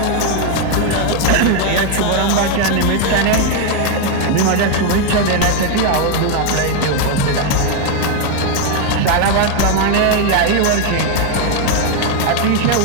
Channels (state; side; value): different; both; correlation 0.01